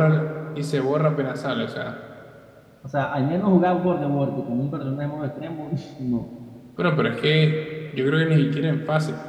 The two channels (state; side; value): identical; both; correlation 1.00